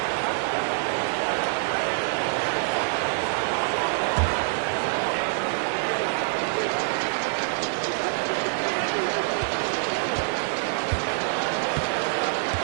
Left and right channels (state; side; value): silent; left; digital silence